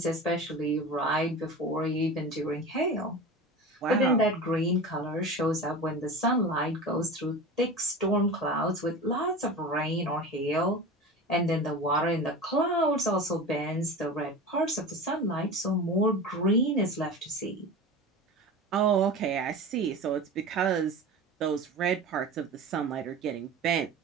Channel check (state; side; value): normal; both; correlation 0.31